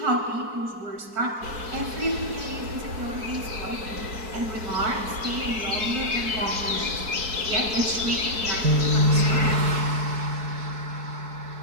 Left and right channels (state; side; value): late; left; 4.6 ms